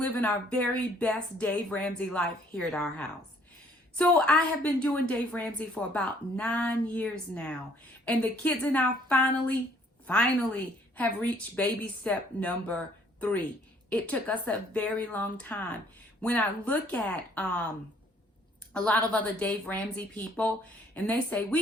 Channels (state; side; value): normal; both; correlation 0.62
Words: our very best Dave Ramsey life here at our house. So I have been doing Dave Ramsey for about 9 years now. And the kids and I finally have reached baby step number 3. It took us a very long time. When I look at a lot of other Dave Ramsey people and they say,